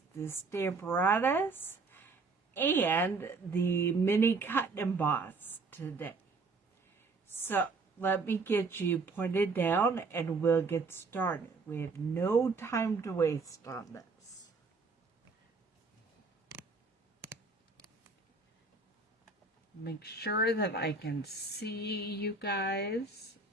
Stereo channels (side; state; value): left; quieter; 4.0 dB